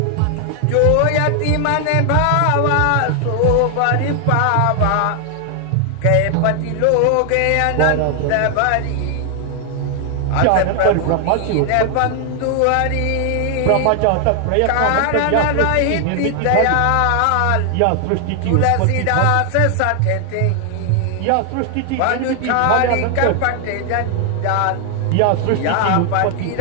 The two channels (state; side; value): different; both; correlation 0.00